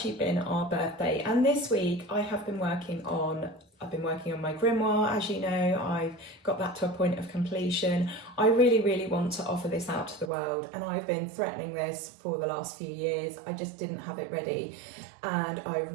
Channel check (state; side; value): drops out; left; at 10.3 s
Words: been our birthday, and this week I've been working on my grimoire. As you know, I've got that to a point of completion. I really want to offer this out to the world, and I've been threatening this for the last few years. I just didn't have it ready, and I